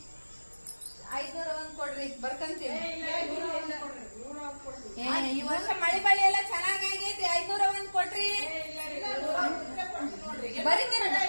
501 ಕೊಡ್ರಿ ಬರ್ಕಂತೀವಿ. ಈ ವರ್ಷ ಮಳೆ ಬಳಿ ಎಲ್ಲ ಚೆನ್ನಾಗೈತಿ. 501 ಕೊಡ್ರಿ.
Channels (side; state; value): both; inverted; correlation -1.00